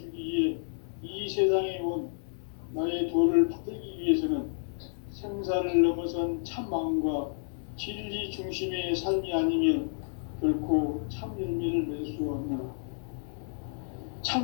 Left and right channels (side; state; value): right; silent; digital silence